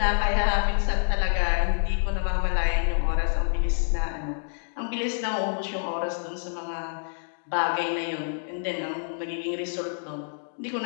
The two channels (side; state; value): right; silent; digital silence